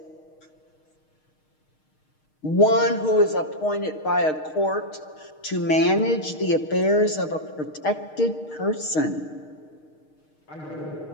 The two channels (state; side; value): late; right; 6.5 ms